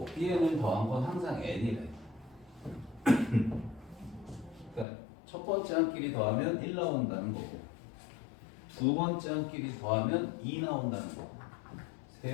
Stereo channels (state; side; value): drops out; right; at 4.9 s